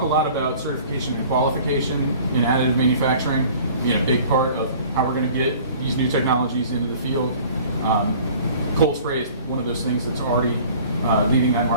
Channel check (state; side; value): inverted; both; correlation -0.48